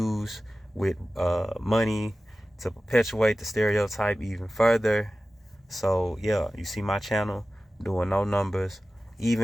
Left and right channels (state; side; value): normal; both; correlation 0.95